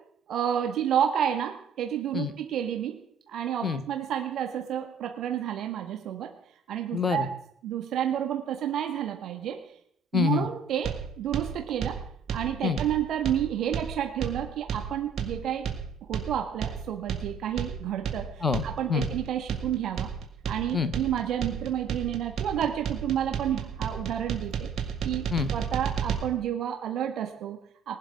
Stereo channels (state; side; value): quieter; left; 5.6 dB